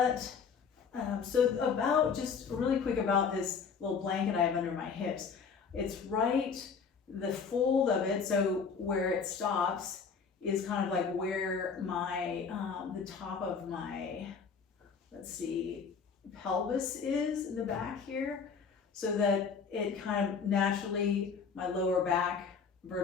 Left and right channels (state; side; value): quieter; right; 5.8 dB